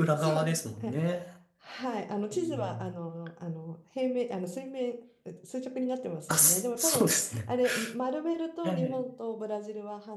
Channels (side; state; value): both; identical; correlation 1.00